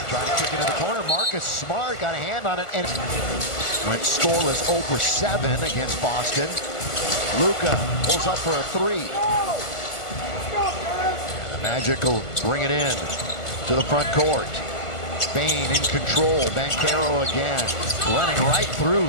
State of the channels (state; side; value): late; right; 1.4 ms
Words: Trying to kick it in the corner. Marcus Smart got a hand on it and went scoreless 0 for 7 against Boston. Luka pulls up for a 3. And the Magic will bring it in to the front court. Bane in control. Banchero again. Running right through